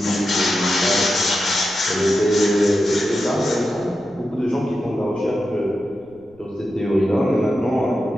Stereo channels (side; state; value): left; noise; rumble, 29 dB below the sound